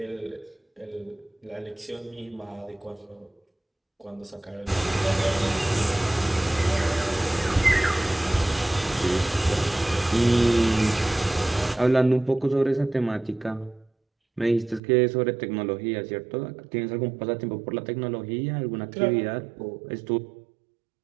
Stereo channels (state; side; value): drops out; left; at 14.8 s